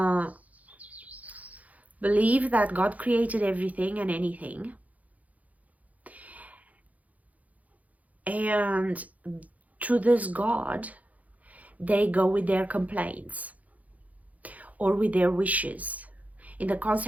believe that God created everything and anything, and to this God they go with their complaints or with their wishes in the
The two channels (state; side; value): late; left; 0.074 ms